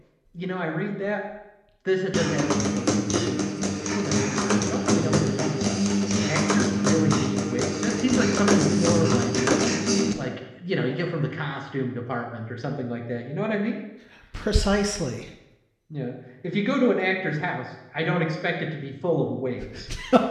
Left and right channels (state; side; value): identical; both; correlation 1.00